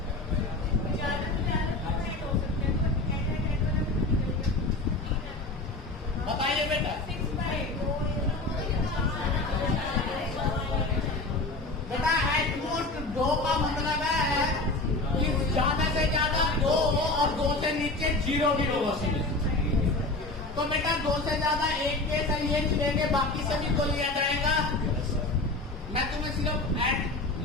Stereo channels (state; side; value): quieter; right; 3.0 dB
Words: बताइए बेटा। बेटा एटमोस्ट 2 का मतलब है कि ज्यादा से ज्यादा 2 और 2 से नीचे 0 भी हो सकते। तो बेटा 2 से ज्यादा 1 केस है, ये लेंगे, बाकी सभी को लिया जाएगा। मैं तुम्हें सिर्फ एट